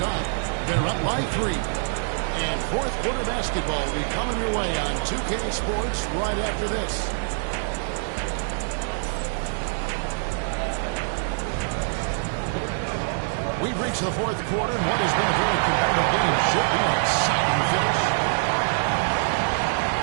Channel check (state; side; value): silent; left; digital silence